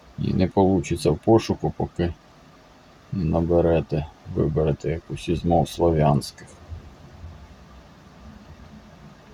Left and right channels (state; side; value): identical; both; correlation 1.00